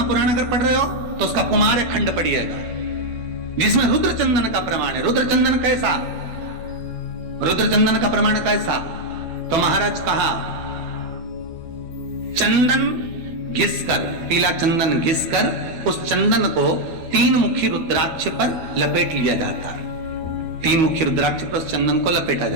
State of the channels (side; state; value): left; late; 12 ms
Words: अगर पढ़ रहे हो तो उसका कुमार खंड पढ़िएगा, जिसमें रुद्र चंदन का प्रमाण है। रुद्र चंदन कैसा, रुद्र चंदन का प्रमाण कैसा? तो महाराज कहा, चंदन घिसकर, पीला चंदन घिसकर उस चंदन को 3 मुखी रुद्राक्ष पर लपेट लिया जाता है। 3 मुखी रुद्राक्ष पर उस चंदन को लपेटा